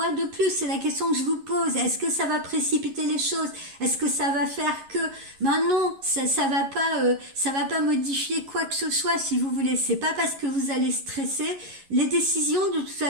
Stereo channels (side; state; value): left; late; 11 ms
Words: de plus? C'est la question que je vous pose. Est-ce que ça va précipiter les choses? Est-ce que ça va faire que... Ben non, ça va pas modifier quoi que ce soit, si vous voulez. C'est pas parce que vous allez stresser. Les décisions, de toute